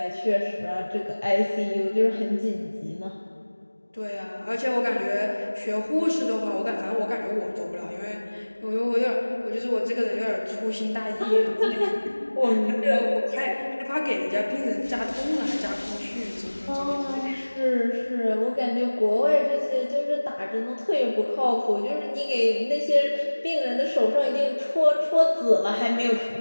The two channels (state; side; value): inverted; both; correlation -1.00